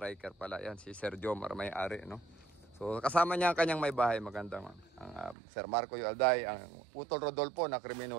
pala yan. Si Sir Jomar may-ari, no? So, kasama niya ang kanyang may bahay. Magandang Sir Marco Yualday, ang Utol Rodolfo na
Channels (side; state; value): left; drops out; at 5.4 s